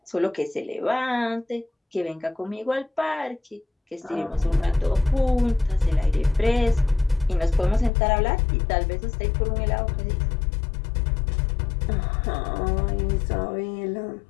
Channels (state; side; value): drops out; right; at 7.9 s